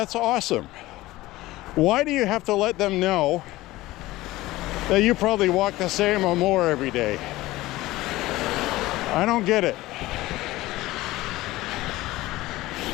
awesome? Why do you have to let them know that you probably walk the same or more every day? I don't get it.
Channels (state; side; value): quieter; right; 18.0 dB